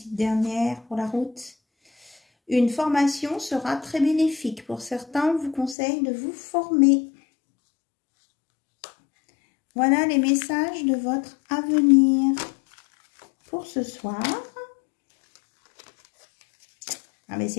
dernière pour la route. Une formation sera très bénéfique. Pour certains, on vous conseille de vous former. Voilà les messages de votre avenir pour ce soir. Ah, mais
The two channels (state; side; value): drops out; right; at 5.8 s